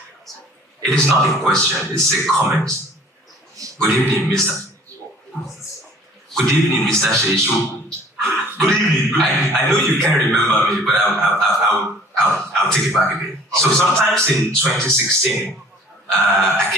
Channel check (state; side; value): normal; both; correlation 0.50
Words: It is not a question, it's a comment. Good evening, Mr. Good evening, Mr. Sheishu. Good evening. I know you can't remember me, but I'll take it back a bit. So sometimes in 2016, I